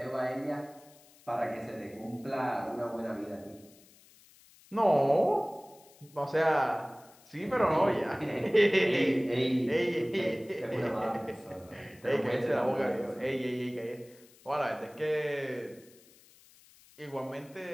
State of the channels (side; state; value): left; noise; hiss, 26 dB below the sound